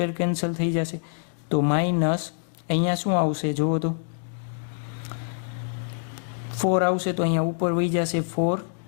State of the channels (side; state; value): right; silent; digital silence